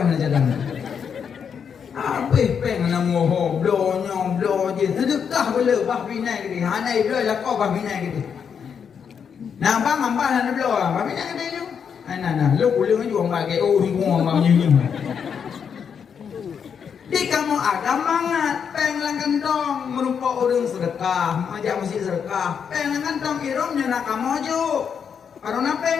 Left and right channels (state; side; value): quieter; right; 7.1 dB